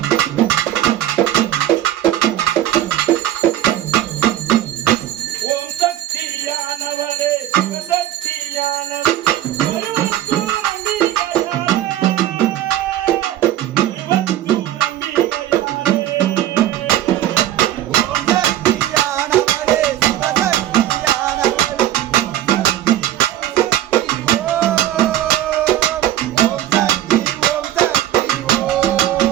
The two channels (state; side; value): quieter; left; 12.8 dB